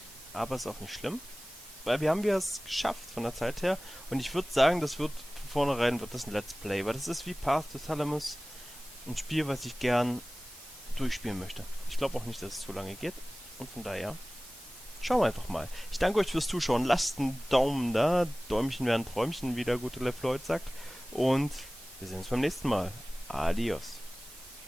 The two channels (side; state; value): both; normal; correlation 0.98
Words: Aber ist auch nicht schlimm. Weil wir haben es geschafft von der Zeit her. Und ich würde sagen, das wird von vornherein wird das ein Let's Play. Weil das ist wie Path to Salamis. Ein Spiel, was ich gern durchspielen möchte. Ich glaube auch nicht, dass es zu lange geht. Und von daher, schauen wir einfach mal. Ich danke euch fürs Zuschauen. Lasst einen Daumen da. Däumchen werden Träumchen, wie der gute LeFloid sagt. Und wir sehen uns beim nächsten Mal. Adios.